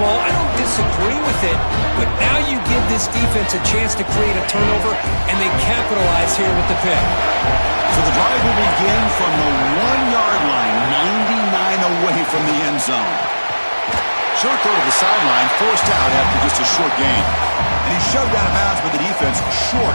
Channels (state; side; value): inverted; both; correlation -1.00